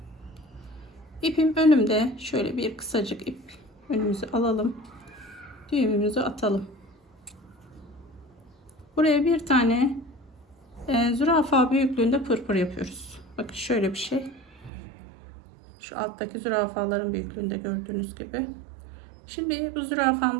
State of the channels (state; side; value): drops out; left; at 14.7 s